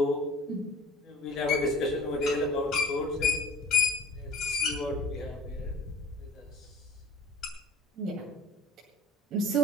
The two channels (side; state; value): both; normal; correlation 0.45